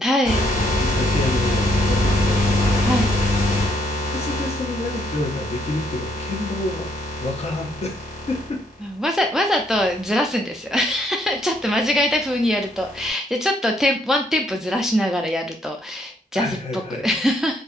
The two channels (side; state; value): both; normal; correlation 0.70